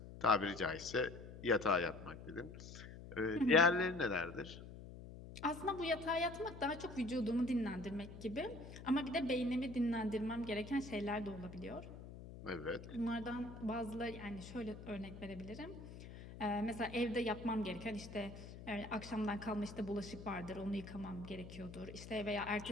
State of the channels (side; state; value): left; noise; hum, 13 dB below the sound